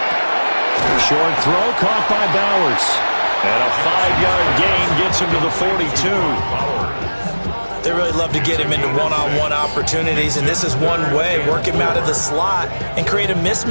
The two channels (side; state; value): both; inverted; correlation -1.00